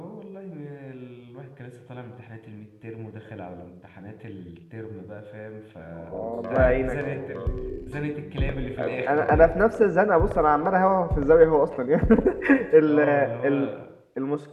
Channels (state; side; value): identical; both; correlation 1.00